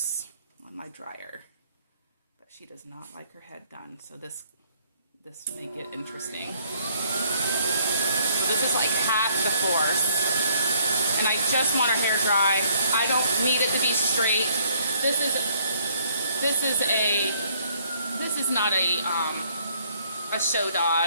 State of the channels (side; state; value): both; inverted; correlation -0.64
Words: on my dryer. But she does not like her head done, so this make it interesting. This is like half the force. And I just want her hair dry. I don't need it to be straight. This is not a show